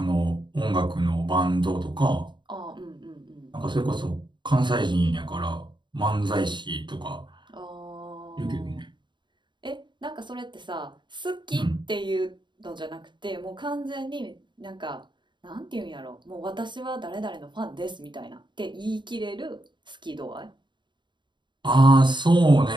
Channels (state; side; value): late; left; 0.22 ms